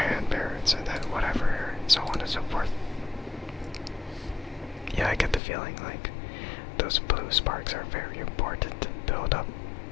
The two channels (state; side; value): drops out; right; at 5.4 s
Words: parrots, and then whatever, so on and so forth. Yeah, I get the feeling like those blue sparks are very important to build up,